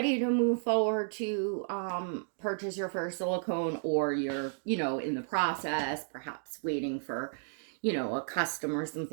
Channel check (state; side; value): silent; left; digital silence